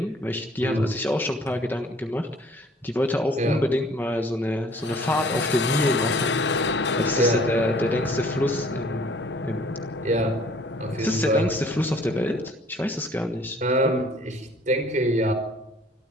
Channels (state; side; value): normal; both; correlation 0.55